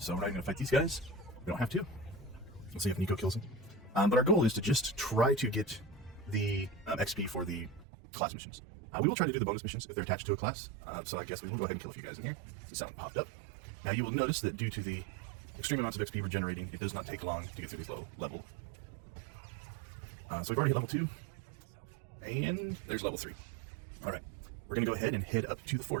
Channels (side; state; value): left; drops out; at 7.9 s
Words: we're not going to fight these guys. We don't have to. Let's see if Nico kills him. But our goal is to just try to get the XP for the class missions. We will try to do the bonus missions if they're attached to a class. So I guess we will go ahead and kill a few guys in here. Since that one popped up. Now you will notice that due to the extreme amounts of XP we're generating, it does not take long to get through these low level. So we've already hit level 2. And there's level 3. Alright. We're going to go ahead and head up to the